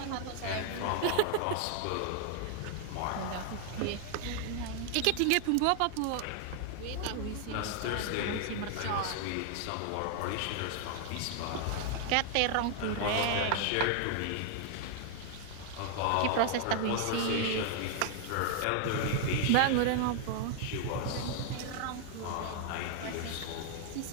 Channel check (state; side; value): different; both; correlation 0.00